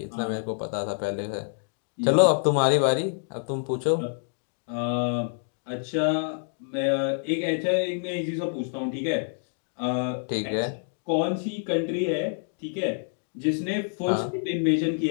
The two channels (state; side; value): silent; right; digital silence